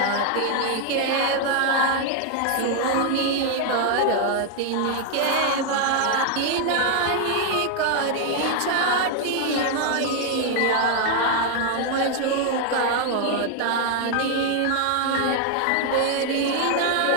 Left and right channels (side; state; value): both; different; correlation 0.00